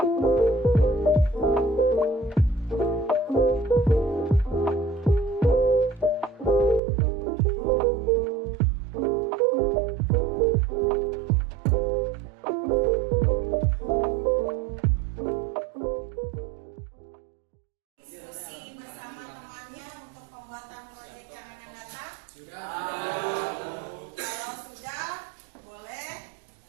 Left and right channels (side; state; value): left; drops out; at 6.8 s